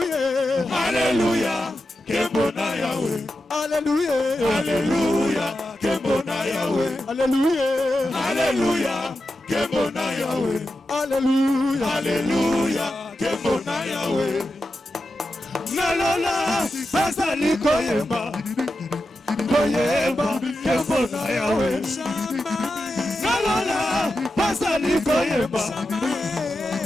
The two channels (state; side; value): normal; both; correlation 0.90